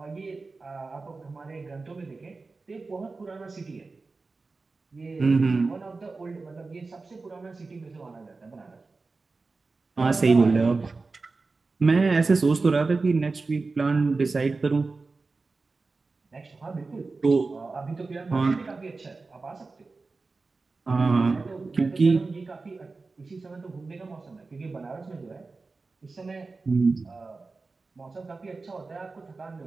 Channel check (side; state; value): left; quieter; 3.9 dB